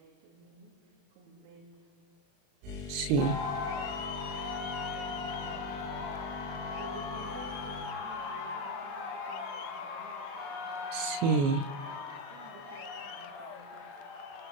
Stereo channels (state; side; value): late; left; 36 ms